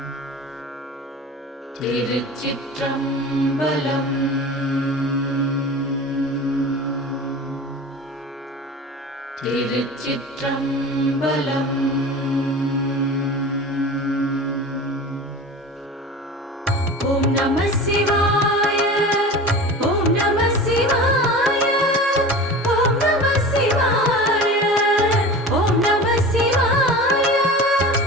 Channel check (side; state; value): both; normal; correlation 0.34